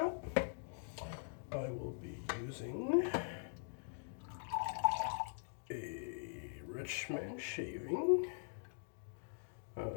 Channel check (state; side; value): silent; right; digital silence